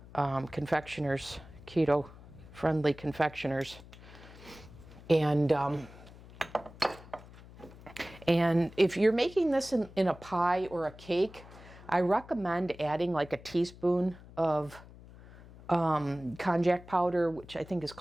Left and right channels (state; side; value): noise; left; hum, 19 dB below the sound